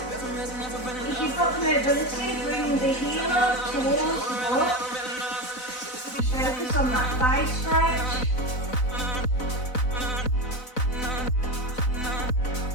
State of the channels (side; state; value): right; late; 4.0 ms